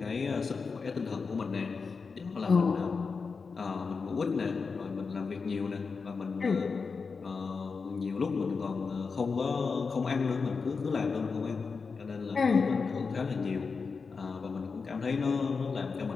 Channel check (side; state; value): right; quieter; 4.9 dB